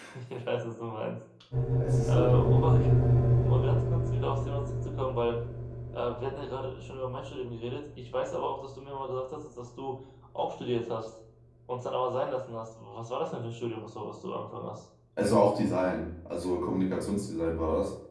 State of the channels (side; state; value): both; identical; correlation 1.00